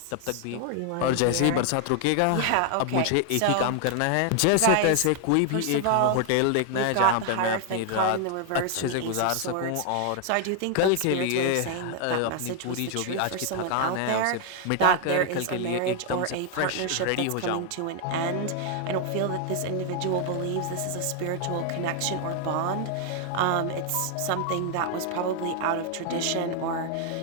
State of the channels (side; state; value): both; different; correlation 0.00